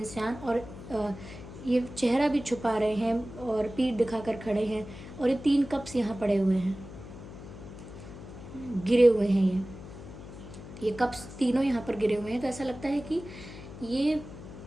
और ये चेहरा भी छुपा रहे हैं और पीठ दिखाकर खड़े हैं, और ये 3 कप्स यहाँ पड़े हुए हैं, गिरे हुए हैं ये कप्स तीनों यहाँ पर गिरे हुए हैं। तो ऐसा लगता है कि ये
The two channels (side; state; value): left; noise; hum, 14 dB below the sound